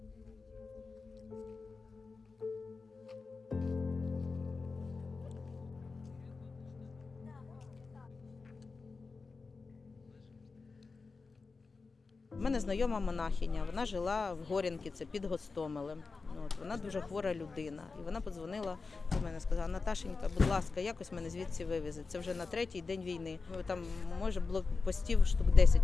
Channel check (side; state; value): right; quieter; 4.3 dB